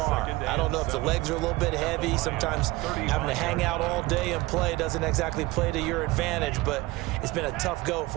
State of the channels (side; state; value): left; quieter; 20.5 dB